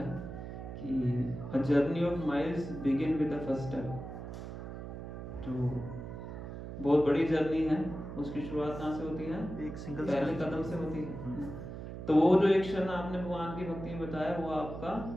कि a journey of miles begin with the first step. जो बहुत बड़ी जर्नी है उसकी शुरुआत कहाँ से होती है? एक सिंगल पहले कदम से होती है। तो वो जो एक क्षण आपने भगवान की भक्ति में बताया वो आपका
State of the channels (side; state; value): right; noise; hum, 9 dB below the sound